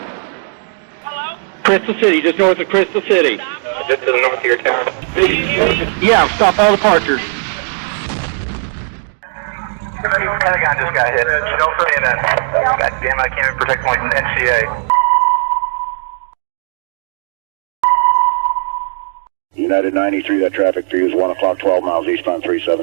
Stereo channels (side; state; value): left; silent; 69 dB below the other